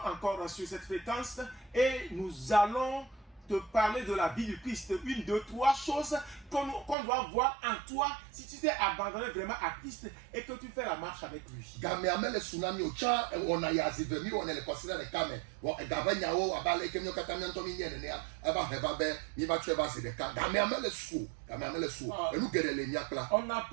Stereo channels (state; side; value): drops out; left; at 7.0 s